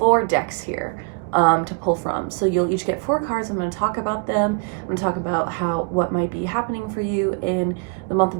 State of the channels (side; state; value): left; quieter; 33.0 dB